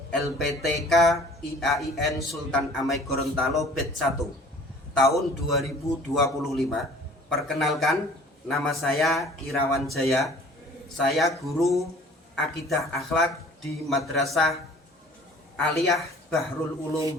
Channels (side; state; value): both; normal; correlation 0.49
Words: LPTK IAIN Sultan Amai Gorontalo Batch 1 tahun 2025. Perkenalkan, nama saya Irawan Jaya. Saya guru Akidah Akhlak di Madrasah Aliyah Bahrul Ulum